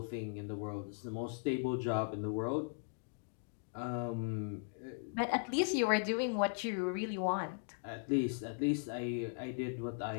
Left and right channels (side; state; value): right; silent; digital silence